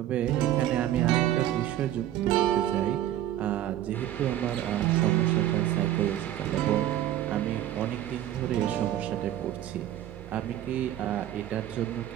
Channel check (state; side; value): quieter; left; 12.5 dB